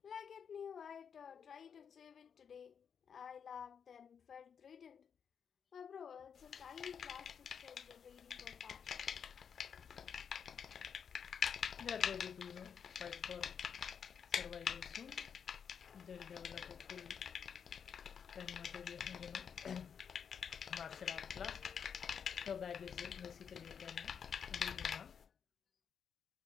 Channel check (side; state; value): right; quieter; 7.2 dB